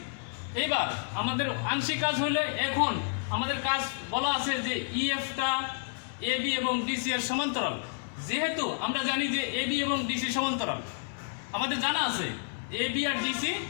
এবার আমাদের আংশিক কাজ হলে এখন আমাদের কাজ বলা আছে যে ইএফটা এবি এবং ডিসি এর সমান্তরাল। যেহেতু আমরা জানি যে এবি এবং ডিসি সমান্তরাল, আমাদের জানা আছে এবি আর ডিসি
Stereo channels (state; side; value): silent; right; 58 dB below the other